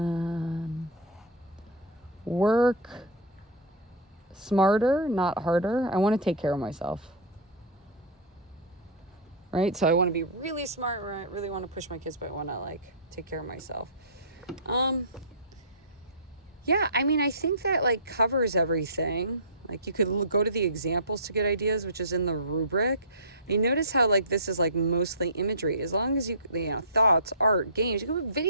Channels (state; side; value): normal; both; correlation -0.17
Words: Work smarter, not harder. I want to take care of myself. Right? So I want to be really smart, right? I really want to push my kids, but I want to like take care of myself. Yeah, I mean, I think that like covers everything. Like you could go to the examples to get ideas, which is in the rubric. And you notice how like this is like mostly imagery. As long as you know, thoughts, art, games, you can put